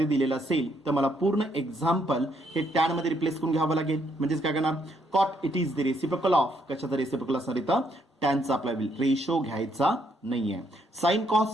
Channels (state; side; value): normal; both; correlation 0.72